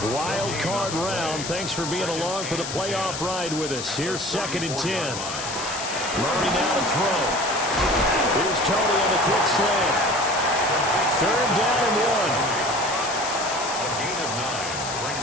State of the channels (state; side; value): noise; left; hiss, 7 dB below the sound